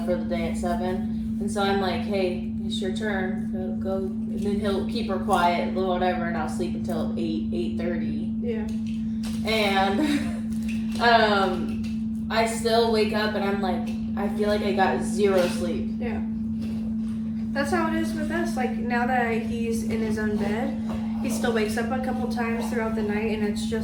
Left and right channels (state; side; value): identical; both; correlation 1.00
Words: for the day at 7. And so I'm like, hey, it's your turn. Go. And then he'll keep her quiet, whatever, and I'll sleep until 8:30. Yeah. And I still wake up and I'm I feel like I got 0 sleep. Yeah. That's how it is with us. Now that he's in his own bed, he still wakes up a couple times throughout the night, and it's